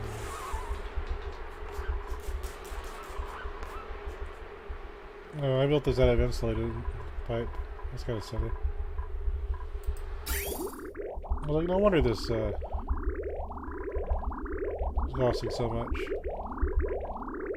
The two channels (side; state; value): both; identical; correlation 1.00